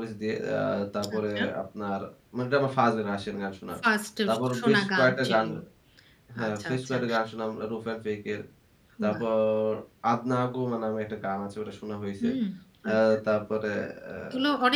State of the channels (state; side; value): identical; both; correlation 1.00